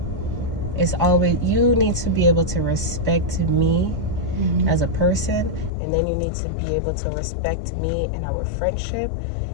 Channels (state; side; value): drops out; right; at 5.7 s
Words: It's always, you need to be able to respect me as a person, and then you need to be able to respect me in our friendship